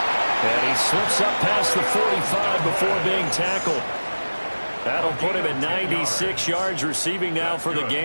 And he slips up past the 45 before being tackled. That'll put him at 96 yards receiving now for the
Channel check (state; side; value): inverted; both; correlation -1.00